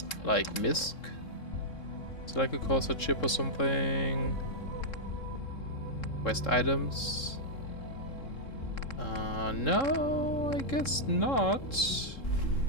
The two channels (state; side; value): late; right; 3.7 ms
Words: Like MISC? Is it like a Corsair chip or something? Quest items? No, I guess not.